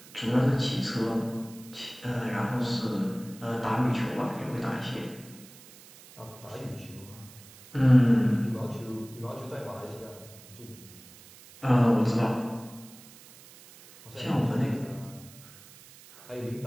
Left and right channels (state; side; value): noise; right; hiss, 21 dB below the sound